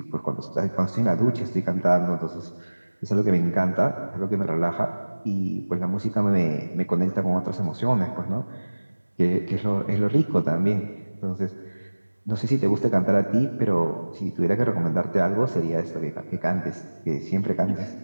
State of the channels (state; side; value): inverted; both; correlation -1.00